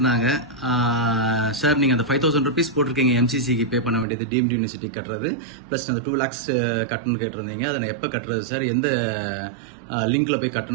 சார், நீங்க அந்த 5000 rupees போட்டிருக்கீங்க எம்சிசிக்கு பே பண்ண வேண்டியது, டீம்டு யூனிவர்சிட்டி கட்டுறது, பிளஸ் அந்த 2 lakhs கட்டணும்னு கேட்டிருந்தீங்க. அதை நான் எப்போ கட்டுறது சார், எந்த லிங்க்ல போய்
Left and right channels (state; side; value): drops out; left; at 4.0 s